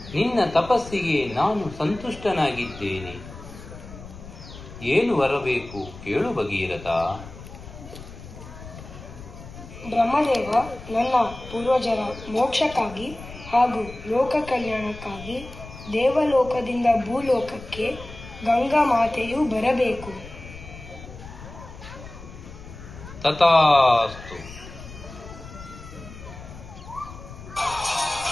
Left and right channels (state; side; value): noise; left; rumble, 15 dB below the sound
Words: ನಿನ್ನ ತಪಸ್ಸಿಗೆ ನಾನು ಸಂತುಷ್ಟನಾಗಿದ್ದೇನೆ. ಏನು ಬರಬೇಕು ಕೇಳು ಭಗೀರಥ. ಬ್ರಹ್ಮದೇವ, ನನ್ನ ಪೂರ್ವಜರ ಮೋಕ್ಷಕ್ಕಾಗಿ ಹಾಗೂ ಲೋಕ ಕಲ್ಯಾಣಕ್ಕಾಗಿ ದೇವಲೋಕದಿಂದ ಭೂಲೋಕಕ್ಕೆ ಗಂಗಾ ಮಾತೆಯು ಬರಬೇಕು. ತಥಾಸ್ತು.